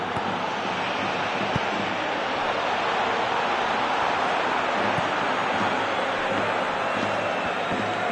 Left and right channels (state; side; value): identical; both; correlation 1.00